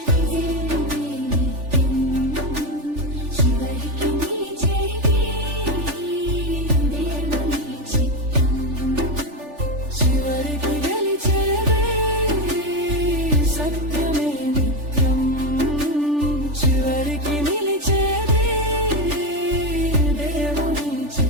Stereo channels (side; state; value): left; late; 3.4 ms